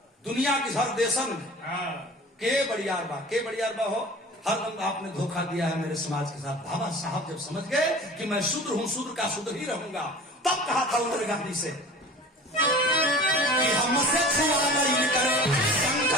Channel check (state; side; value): normal; both; correlation 0.41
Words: दुनिया की हर देशन के बड़ियार बा हो, हर आपने धोखा दिया है मेरे समाज के साथ। बाबा साहब जब समझ गए कि मैं शूद्र हूँ, शूद्र का शूद्र ही रहूंगा, तब कहा था उन्होंने गांधी से कि हमसे छुआ नहीं करे